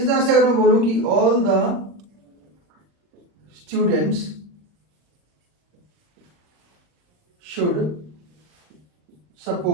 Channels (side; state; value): left; late; 39 ms